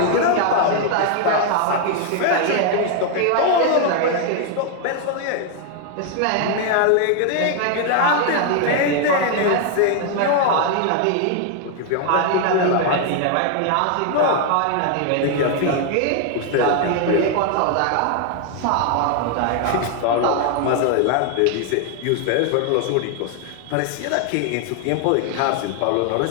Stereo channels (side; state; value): both; different; correlation 0.00